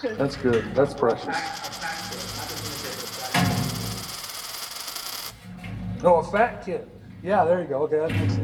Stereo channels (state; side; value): identical; both; correlation 1.00